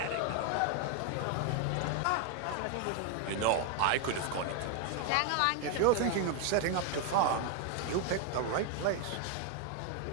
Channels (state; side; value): different; both; correlation 0.01